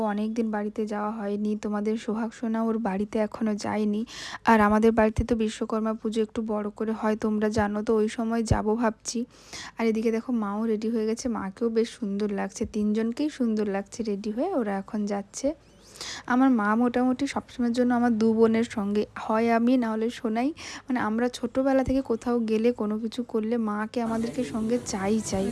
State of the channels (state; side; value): identical; both; correlation 1.00